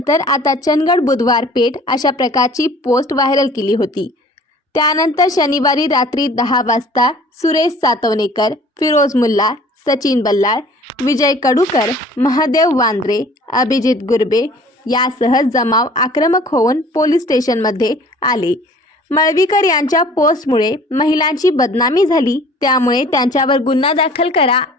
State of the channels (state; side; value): normal; both; correlation 0.50